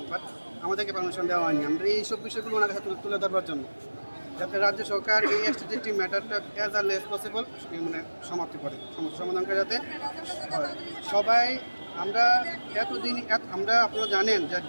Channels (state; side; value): inverted; both; correlation -1.00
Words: বাট আমাদেরকে পারমিশন দেওয়া হয়নি। আমরা এইসব বিষয়গুলো ওনার কাছে তুলে ধরবার জন্য, যাতে রাজ্য সরকার এই এসটিসিটি ম্যাটারটা অ্যাজ আর্লি অ্যাজ পসিবল মানে সমাপ্তি করে, সমস্যা সমাধান করে যাতে সবাই। আমরা এতদিন আমরা আপনারা জানেন যে